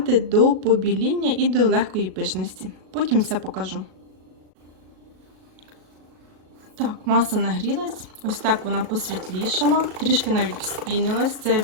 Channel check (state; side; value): late; left; 37 ms